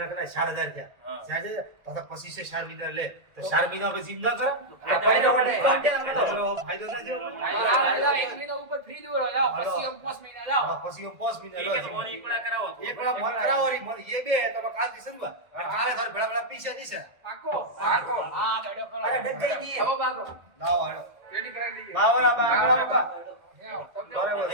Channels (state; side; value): late; left; 1.6 ms